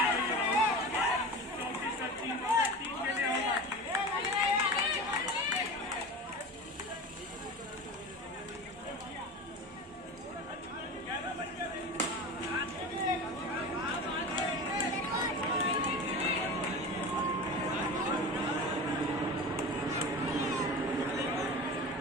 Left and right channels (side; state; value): both; normal; correlation 0.31